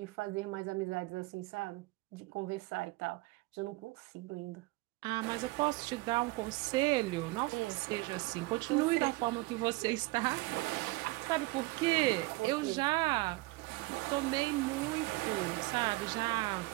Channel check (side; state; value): left; quieter; 21.9 dB